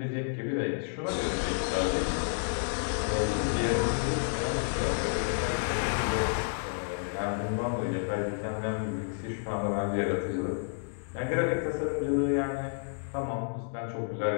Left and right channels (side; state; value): right; silent; digital silence